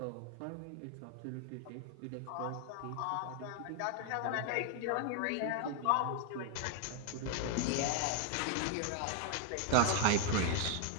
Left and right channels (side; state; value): both; different; correlation 0.00